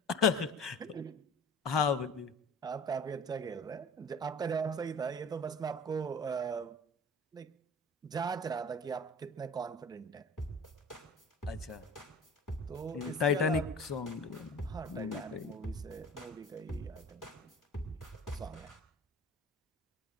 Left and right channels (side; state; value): both; normal; correlation 0.42